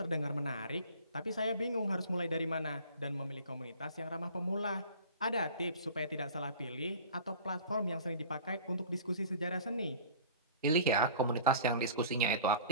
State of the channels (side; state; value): both; inverted; correlation -0.43